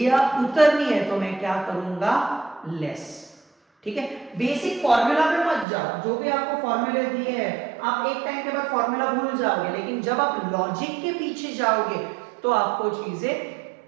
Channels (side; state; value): left; drops out; at 5.7 s